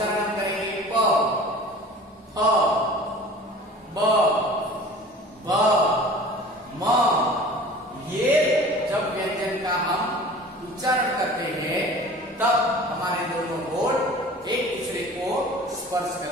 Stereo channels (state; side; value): normal; both; correlation 0.42